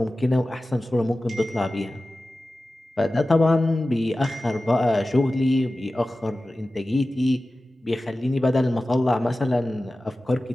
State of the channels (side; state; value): both; normal; correlation 0.95